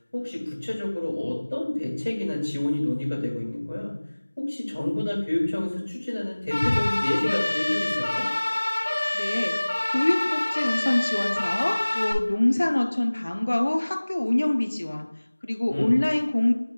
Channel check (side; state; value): both; inverted; correlation -1.00